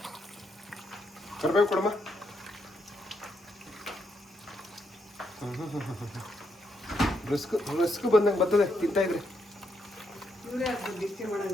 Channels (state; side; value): normal; both; correlation 0.78